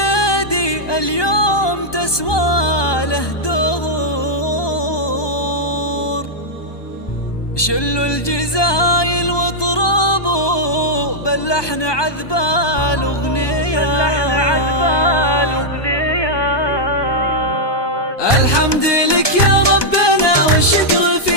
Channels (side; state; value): right; late; 1.2 ms